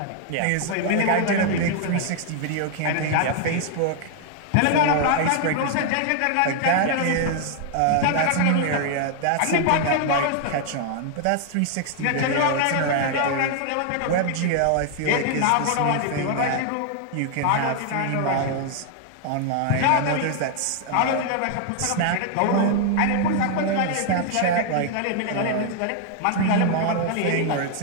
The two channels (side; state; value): both; different; correlation 0.00